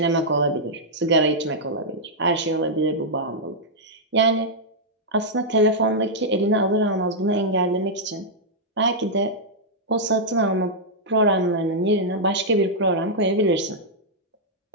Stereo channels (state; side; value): normal; both; correlation -0.08